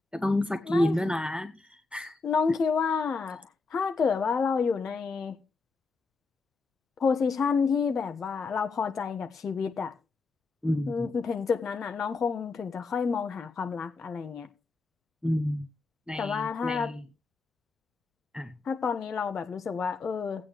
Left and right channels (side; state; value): right; quieter; 4.1 dB